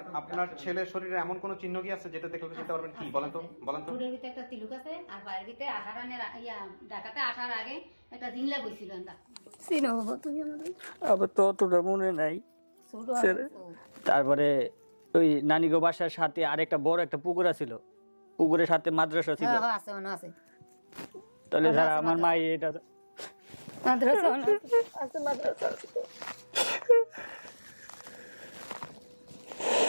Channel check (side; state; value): both; inverted; correlation -1.00